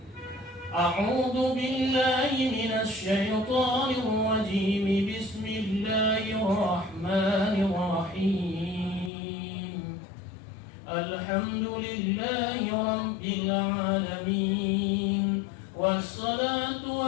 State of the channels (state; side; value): drops out; right; at 9.1 s